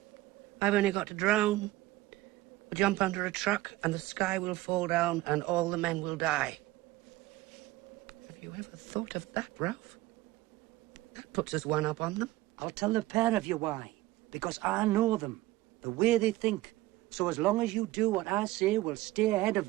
I've only got to drown. We'll jump under a truck and the sky will fall down and all the men will die. Have you ever thought of that, Ralph? That puts us one up on them. I'll tell the pair of you why. Because I know them. The way they think. So as long as you do what I say, we'll stay ahead of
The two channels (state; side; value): quieter; left; 17.7 dB